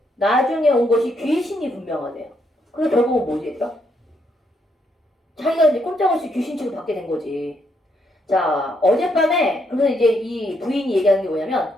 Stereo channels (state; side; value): normal; both; correlation 0.76